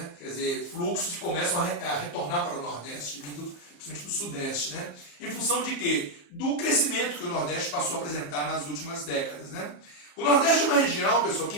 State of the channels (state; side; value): late; right; 34 ms